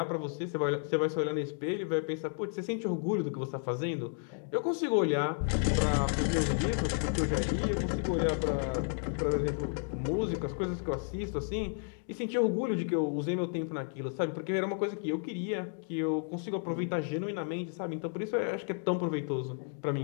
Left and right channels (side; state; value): right; silent; 56 dB below the other